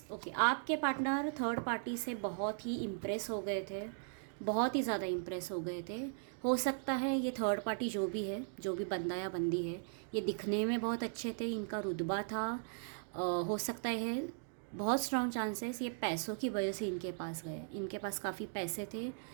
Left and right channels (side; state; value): left; silent; digital silence